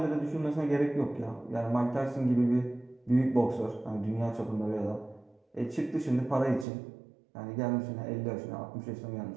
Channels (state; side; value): drops out; left; at 6.7 s